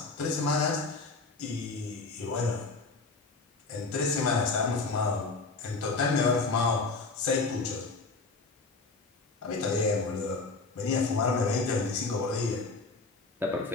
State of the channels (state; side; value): quieter; right; 3.8 dB